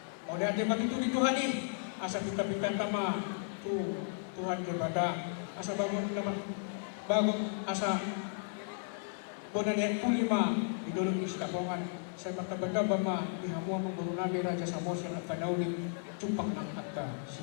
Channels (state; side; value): silent; right; 55 dB below the other